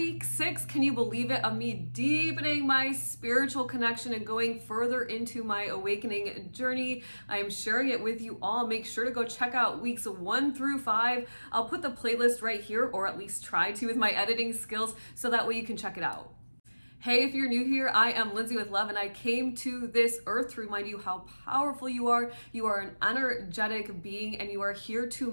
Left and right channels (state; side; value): inverted; both; correlation -1.00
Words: 6. Can you believe it? Of me deepening my spiritual connection and going further into my awakening journey. I am sharing it with you all. Make sure to go check out weeks 1 through 5. I'll put the playlist right here, or at least try to with my editing skills, so that way you can check it out. Hey, if you're new here, I am Lindsay with Love, and I came to this earth to remind you how powerful you are. You are an energetic being, and you are here to